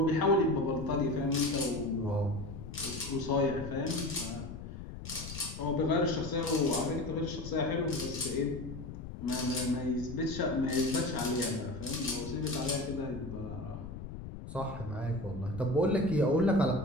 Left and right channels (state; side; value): noise; left; rumble, 10 dB below the sound